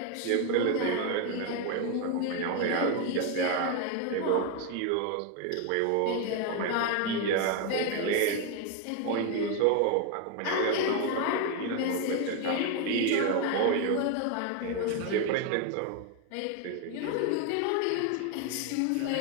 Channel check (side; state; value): both; different; correlation 0.01